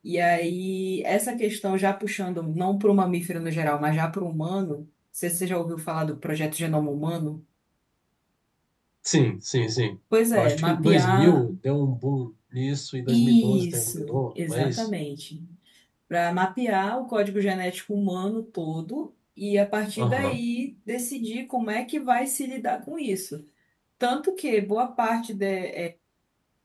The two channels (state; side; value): identical; both; correlation 1.00